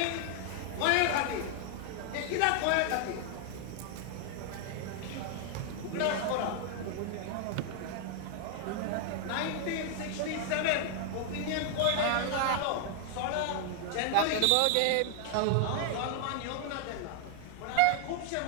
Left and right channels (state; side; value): different; both; correlation 0.00